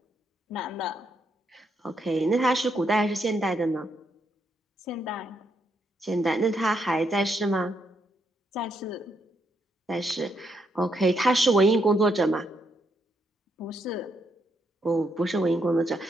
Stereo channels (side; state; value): both; normal; correlation 0.78